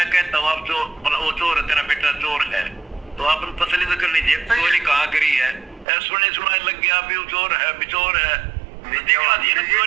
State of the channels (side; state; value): left; drops out; at 5.9 s